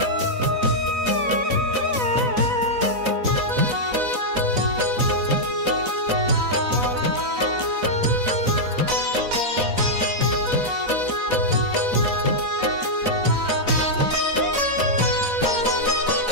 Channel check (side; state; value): left; late; 4.0 ms